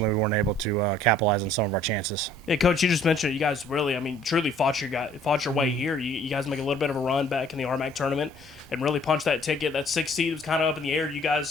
we weren't able to capitalize on some of our chances. Yeah, Coach, you just mentioned you guys really, truly fought your way here. You guys make a little bit of a run back in the RMAC tournament and really punched that ticket. That 6th seed was kind of up in the air. You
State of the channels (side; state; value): both; normal; correlation 0.57